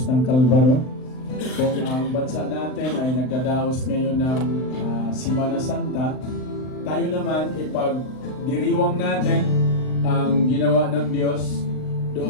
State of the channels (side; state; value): right; late; 39 ms